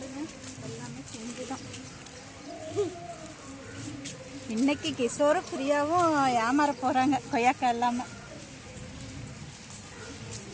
எல்லாமே பிஞ்சுதான். இன்னைக்கு கிஷோரும் பிரியாவும் ஏமாற போறாங்க கொய்யாக்காய் இல்லாம.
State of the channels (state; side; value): identical; both; correlation 1.00